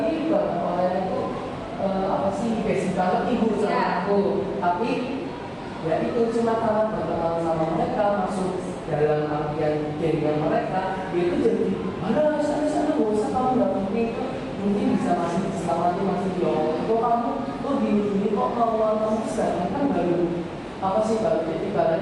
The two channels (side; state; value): both; identical; correlation 1.00